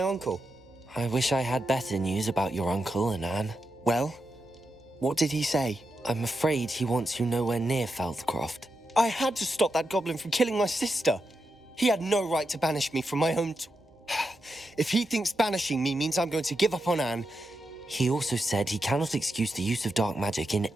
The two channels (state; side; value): normal; both; correlation 0.86